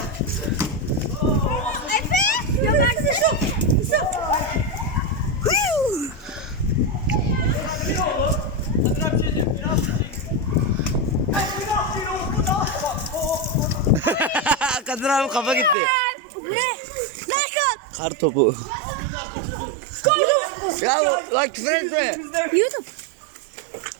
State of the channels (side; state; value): left; drops out; at 15.8 s